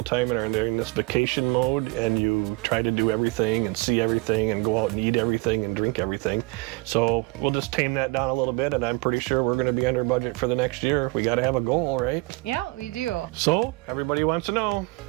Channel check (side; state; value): left; quieter; 24.5 dB